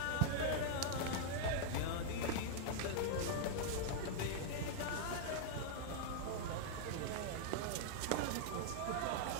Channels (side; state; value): both; different; correlation -0.01